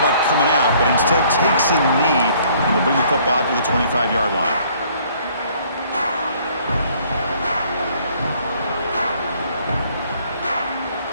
coming out, but instead takes a knee and will bring the football to the 25-yard line.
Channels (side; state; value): both; inverted; correlation -0.60